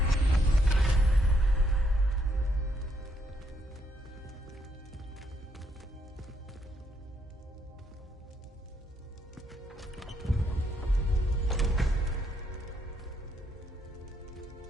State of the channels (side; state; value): both; normal; correlation 0.74